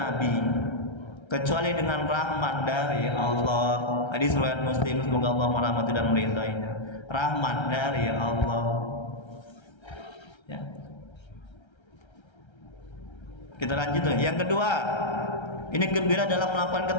kecuali dengan rahmat dari Allah. Hadis riwayat Muslim, semoga Allah merahmati dan meridainya. Rahmat dari Allah, ya. Kita lanjut. Yang kedua, ini gembira dalam melakukan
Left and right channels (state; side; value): late; right; 1.3 ms